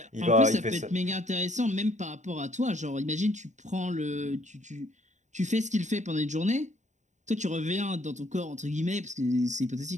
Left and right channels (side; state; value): left; late; 0.35 ms